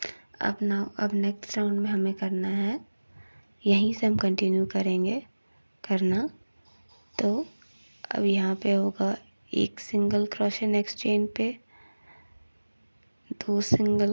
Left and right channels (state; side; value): inverted; both; correlation -1.00